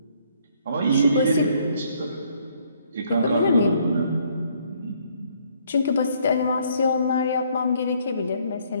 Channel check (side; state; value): both; inverted; correlation -0.66